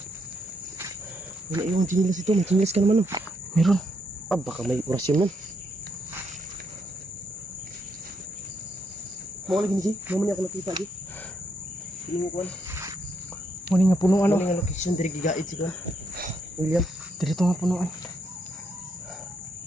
Wala yung chinilas ito. May chinilas ka naman. Meron. Ah, baka may orasyon nun. Mau lagi ni Ji, mau ni ako nakita Ji. Piling ko Muni nga punuan. Muni nga location diri gigaid si Kuan. William, diri to nga punuan.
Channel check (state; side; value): normal; both; correlation 0.76